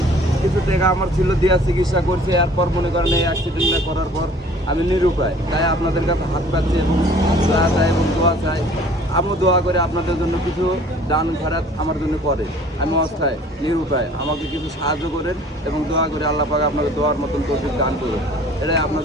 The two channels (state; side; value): normal; both; correlation 0.51